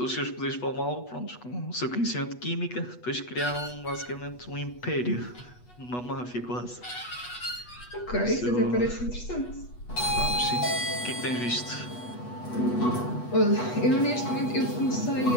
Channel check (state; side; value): late; right; 8.2 ms